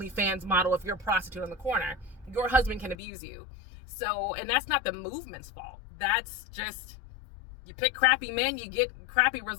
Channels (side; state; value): right; drops out; at 3.0 s